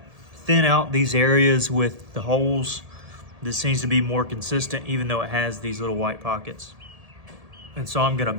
thin out these areas with the holes. This seems to be more consistent, even though it has these little white pockets. And so I'm gonna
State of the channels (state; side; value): late; left; 1.7 ms